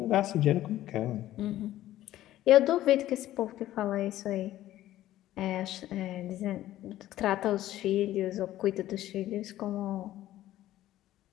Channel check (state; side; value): quieter; right; 14.0 dB